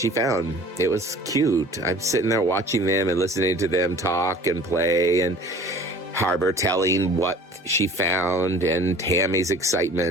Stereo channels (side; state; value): both; normal; correlation 0.46